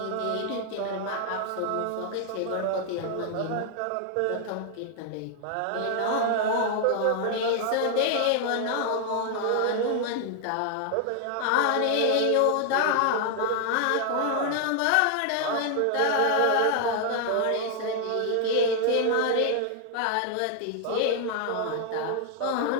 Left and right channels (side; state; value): both; different; correlation 0.00